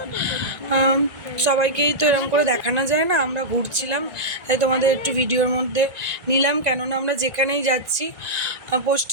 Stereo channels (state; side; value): late; left; 2.0 ms